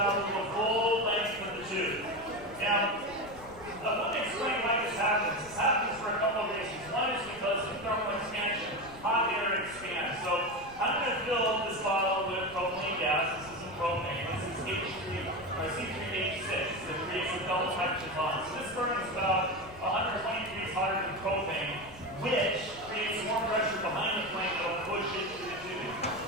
the full length of the tube. Now, let me explain why this happens. This happens for a couple of reasons. One is because of thermal expansion. Hot air expands. So I'm going to fill this bottle with propylene gas. This isn't propane. This is C3H6 that creates a double hydrogen bond. So this burns about 120 degrees hotter than propane, which creates more pressure behind the flame that will push it through the tubing.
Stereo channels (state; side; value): noise; left; rumble, 19 dB below the sound